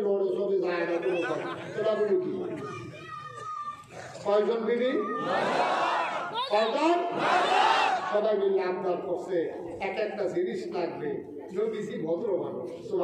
লড়ে চলে যায় না, তোরা বলু কি কয়জন বিবি কয়জন সবাই মিলে আবদার করছে এক একটা জিনিস লাগবে নবীজি ভদ্র মানুষ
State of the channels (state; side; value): identical; both; correlation 1.00